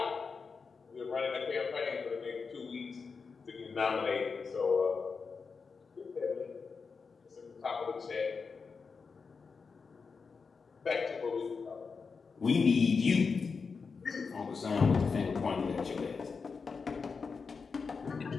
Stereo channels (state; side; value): quieter; right; 5.1 dB